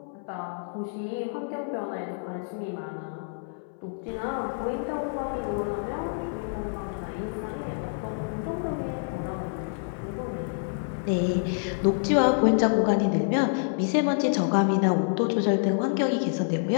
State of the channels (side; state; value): right; silent; 59 dB below the other